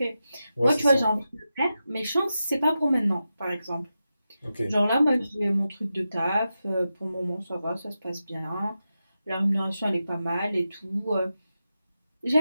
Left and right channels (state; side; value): inverted; both; correlation -0.90